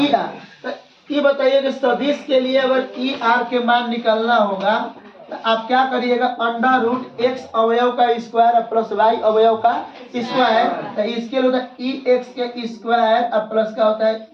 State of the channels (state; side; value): identical; both; correlation 1.00